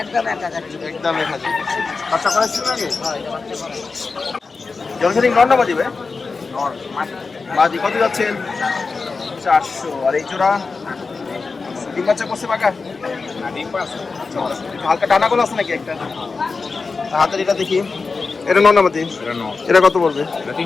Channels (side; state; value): right; quieter; 4.3 dB